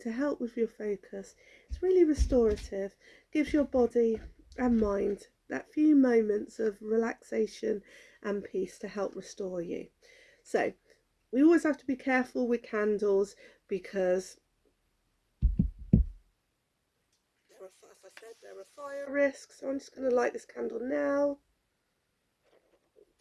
to help with your focus. It's really restorative, gives your body and mind that few moments of relaxation and peace to help restore you. So we always have to be careful with candles because as I said, there are fire risks. So I'm just going to light this candle now.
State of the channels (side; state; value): both; identical; correlation 1.00